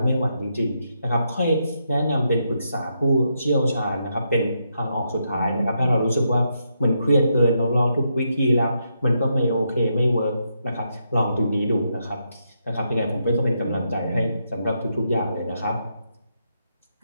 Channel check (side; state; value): both; inverted; correlation -0.80